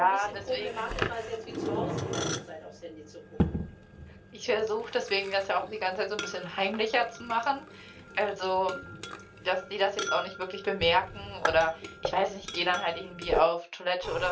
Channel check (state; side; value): identical; both; correlation 1.00